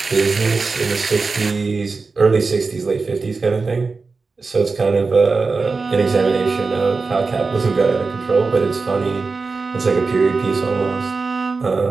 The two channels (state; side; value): quieter; left; 4.2 dB